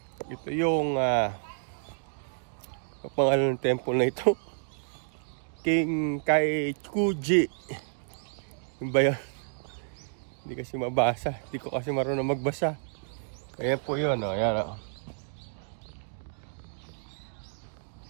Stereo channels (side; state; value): left; silent; digital silence